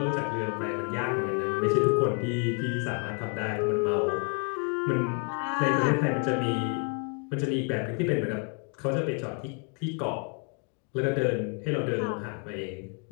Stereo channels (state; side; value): quieter; right; 37.8 dB